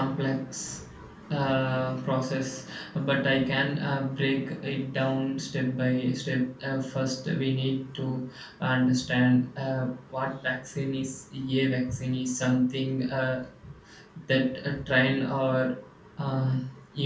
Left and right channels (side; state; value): both; identical; correlation 1.00